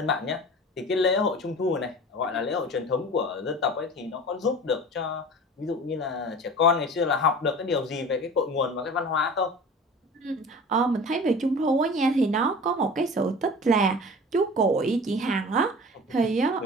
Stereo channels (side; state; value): both; normal; correlation 0.39